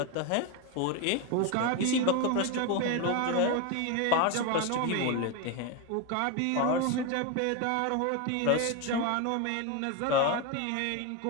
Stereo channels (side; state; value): both; different; correlation 0.02